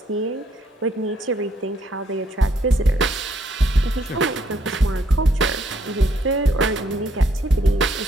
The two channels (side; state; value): both; normal; correlation 0.70